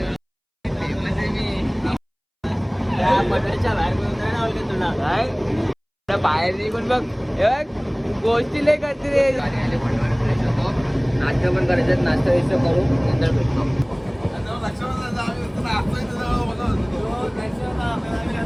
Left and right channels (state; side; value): identical; both; correlation 1.00